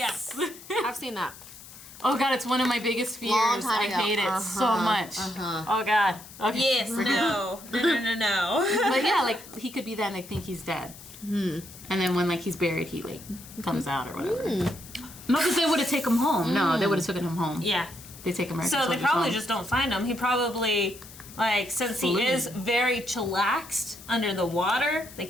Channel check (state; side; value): noise; left; hiss, 18 dB below the sound